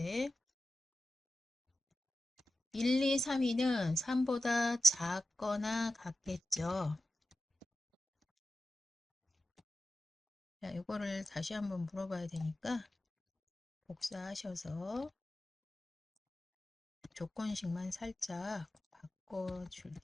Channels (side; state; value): both; normal; correlation 0.91